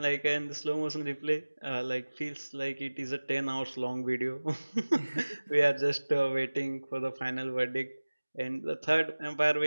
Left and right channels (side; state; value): both; inverted; correlation -1.00